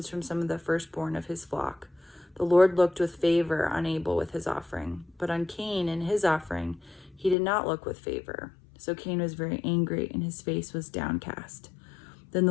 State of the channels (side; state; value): right; drops out; at 7.4 s